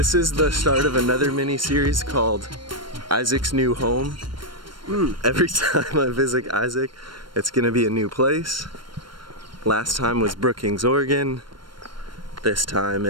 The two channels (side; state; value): left; late; 0.72 ms